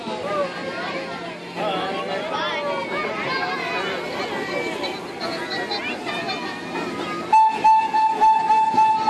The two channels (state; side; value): identical; both; correlation 1.00